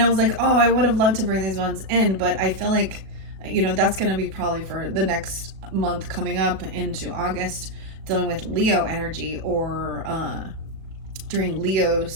was like, oh, I would have loved to bring these ones in, but I feel like, that's going to be probably for the next month coming up into August, dealing with Leo energy, or during Leo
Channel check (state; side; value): late; left; 36 ms